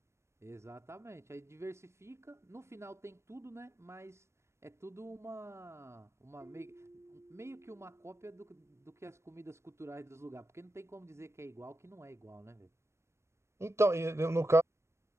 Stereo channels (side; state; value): left; late; 0.13 ms